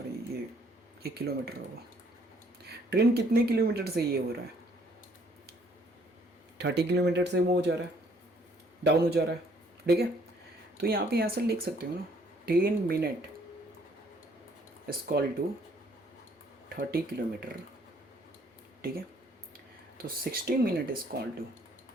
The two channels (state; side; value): normal; both; correlation 0.63